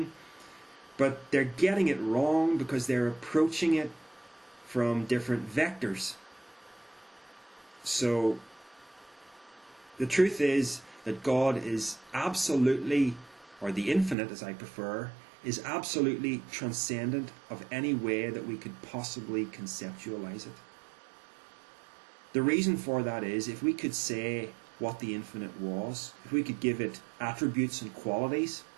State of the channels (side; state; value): left; drops out; at 14.2 s